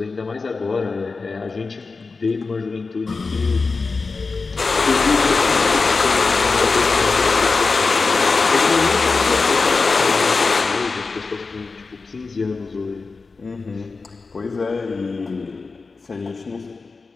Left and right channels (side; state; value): right; quieter; 4.2 dB